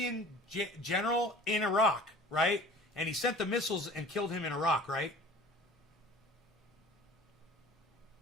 general in Iraq, right? And he sent the missiles and killed him in Iraq, right?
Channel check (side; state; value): both; normal; correlation 0.44